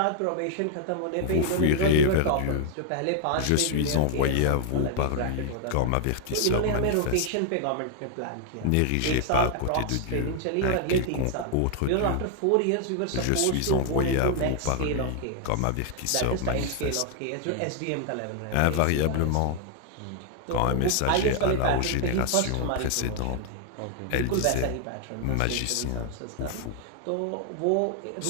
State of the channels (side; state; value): both; different; correlation 0.00